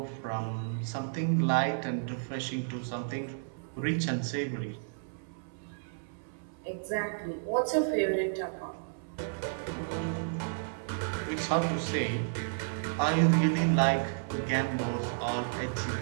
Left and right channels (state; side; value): silent; left; 56 dB below the other